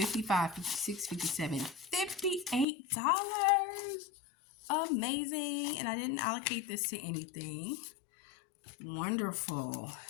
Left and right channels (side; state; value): right; drops out; at 2.7 s